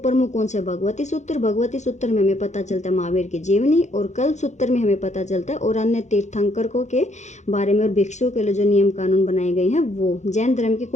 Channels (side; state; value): right; late; 0.34 ms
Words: कौन से, भगवती सूत्र। भगवती सूत्र में हमें पता चलता है महावीर की जीवनी, और कल्प सूत्र में हमें पता चलता है और अन्य तीर्थंकरों के बारे में और भिक्षुओं के लिए जो नियम कानून बनाए गए हैं वो। जैन धर्म की